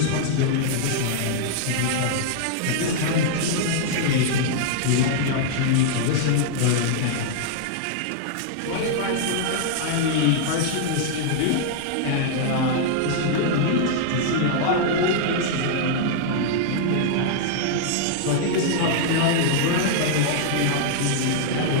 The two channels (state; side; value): different; both; correlation -0.01